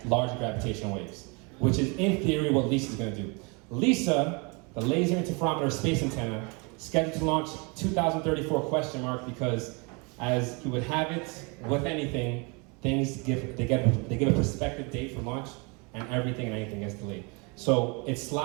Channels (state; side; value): quieter; left; 30.9 dB